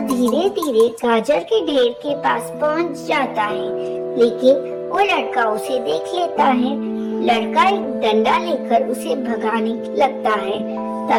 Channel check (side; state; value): both; identical; correlation 1.00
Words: धीरे धीरे गाजर के ढेर के पास पहुंच जाता है, लेकिन वो लड़का उसे देख लेता है। लड़का एक डंडा लेकर उसे भगाने लगता है।